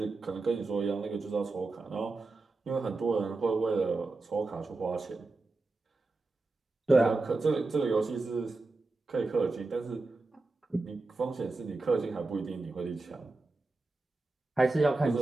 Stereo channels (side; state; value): left; quieter; 3.4 dB